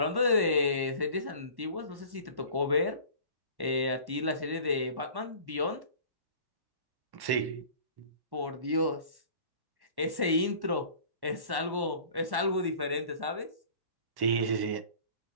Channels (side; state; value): left; late; 1.1 ms